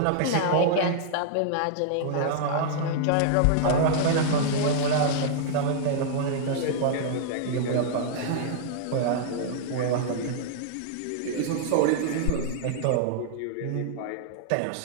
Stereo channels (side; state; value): both; different; correlation -0.01